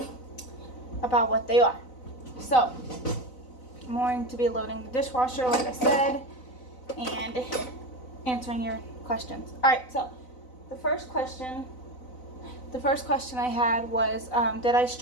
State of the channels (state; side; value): late; right; 4.0 ms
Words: what they are. So I'm going to be loading the dishwasher, like I said, and answering your questions. All right, so the first question I had was, did I